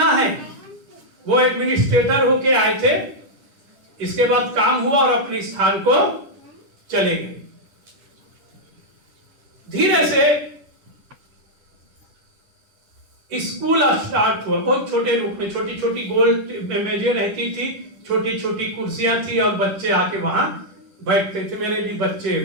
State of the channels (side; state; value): left; late; 10 ms